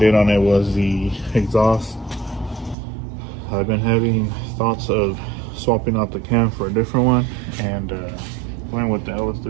on it was the exhaust. I've been having thoughts of swapping out the cam for a different one and going with the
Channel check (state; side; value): drops out; left; at 2.8 s